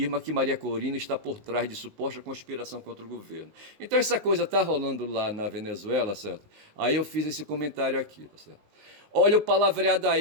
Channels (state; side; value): late; left; 19 ms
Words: que Maria Corina está por trás de suposta conspiração contra o governo. Então essa coisa está rolando lá na Venezuela, certo? Aí eu fiz esse comentário aqui, tá certo? Olha o palavreado